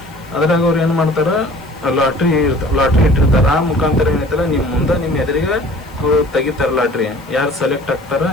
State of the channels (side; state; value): left; noise; hiss, 28 dB below the sound